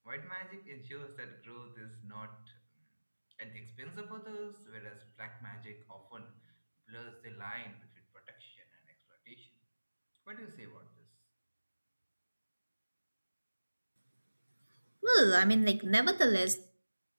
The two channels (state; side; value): inverted; both; correlation -1.00